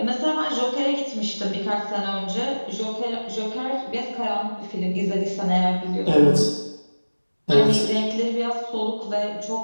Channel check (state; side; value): inverted; both; correlation -1.00